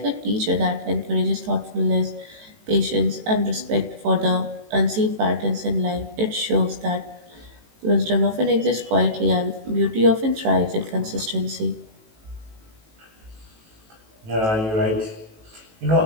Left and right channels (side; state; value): left; late; 18 ms